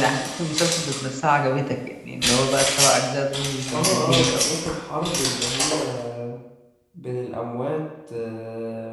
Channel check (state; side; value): identical; both; correlation 1.00